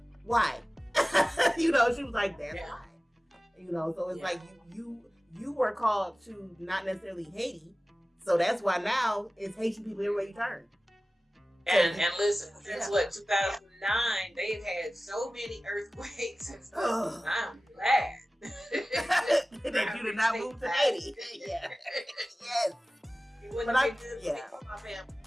why? She was like, that's why. So it's like you were called to not necessarily Haiti. So that's why now it's Haitian people everywhere you turn. And listen, since 2009, they've had so many earthquakes and stuff. I'm glad that you did not move to Haiti. Yeah. Yes. But my family.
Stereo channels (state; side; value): normal; both; correlation 0.97